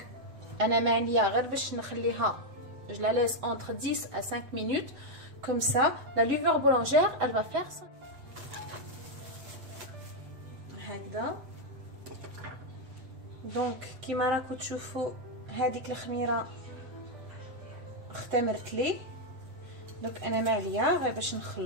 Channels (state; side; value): late; left; 8.0 ms